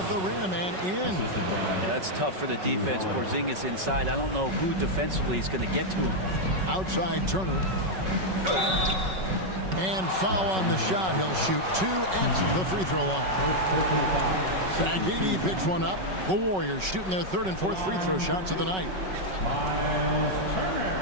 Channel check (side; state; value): left; late; 5.3 ms